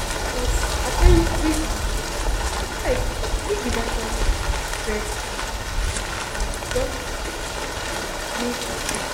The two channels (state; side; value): identical; both; correlation 1.00